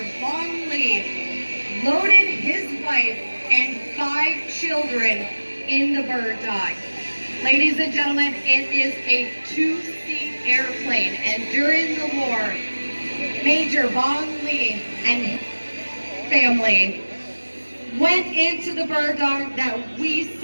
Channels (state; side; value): inverted; both; correlation -1.00